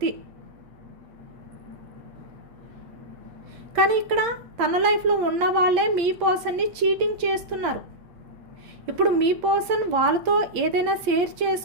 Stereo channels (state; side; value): late; left; 8.7 ms